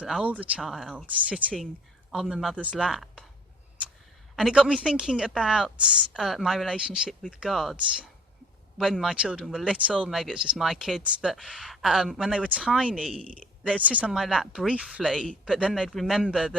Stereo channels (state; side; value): normal; both; correlation 0.53